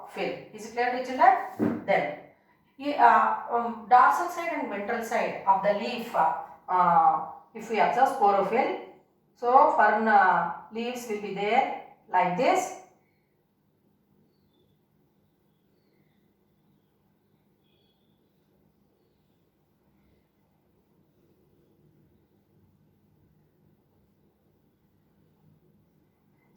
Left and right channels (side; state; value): both; identical; correlation 1.00